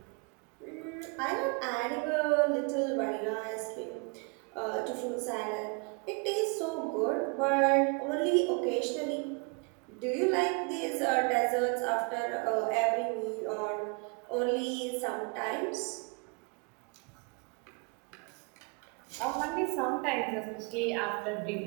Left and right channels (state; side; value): quieter; left; 33.2 dB